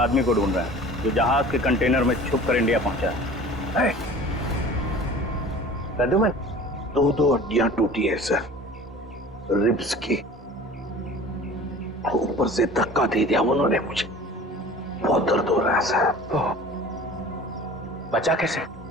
को ढूंढ रहे हैं जो जहाज के कंटेनर में छुप कर इंडिया पहुंचा है। प्रद्युमन, 2 हड्डियां टूटी है सर, रिब्स की। ऊपर से धक्का दे दिया उन्होंने मुझे, बहुत दर्द हो रहा है सर। बचा कैसे?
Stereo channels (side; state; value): both; normal; correlation 0.42